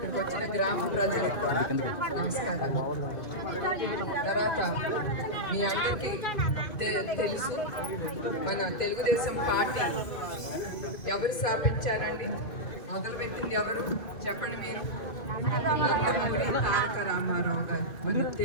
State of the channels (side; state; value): right; late; 2.5 ms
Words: వచ్చిన గ్రామ ప్రజలకు కూడా నమస్కారాలు. తర్వాత మీ అందరికీ తెలుసు, మన తెలుగుదేశం పార్టీ ఎవరు స్థాపించారండి? మొదలుపెట్టింది ఎవరు చెప్పండి మీరు? నందమూరి తారక రామారావు గారు. మన